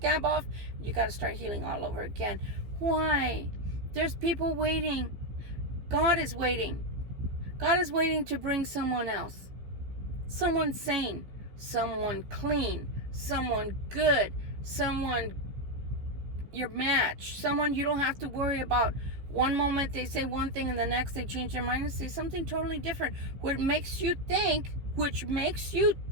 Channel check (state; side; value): late; left; 15 ms